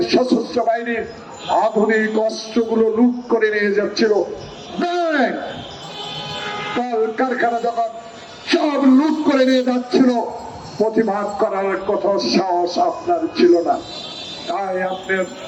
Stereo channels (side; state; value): both; identical; correlation 1.00